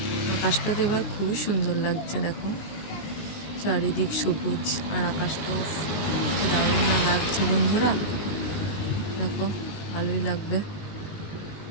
আকাশটাতে এবার খুবই সুন্দর লাগছে, দেখো চারিদিক সবুজ আর আকাশটাও দারুণ না লাগছে বন্ধুরা। দেখো ভালোই লাগবে।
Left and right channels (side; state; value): right; late; 19 ms